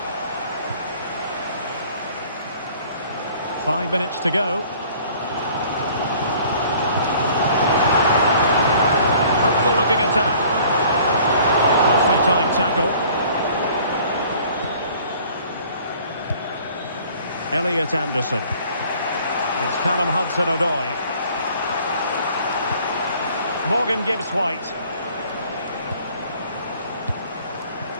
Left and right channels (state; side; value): inverted; both; correlation -0.54